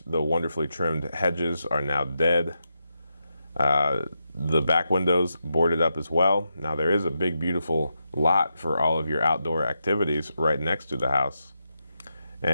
The wonderfully trimmed hedges are now dead. The back windows boarded up as well. Now there is a big, beautiful lot for all of your outdoor activities right next to the house.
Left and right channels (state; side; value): inverted; both; correlation -0.86